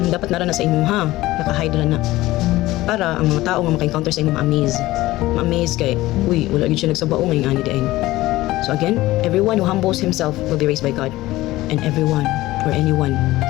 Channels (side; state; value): right; quieter; 17.5 dB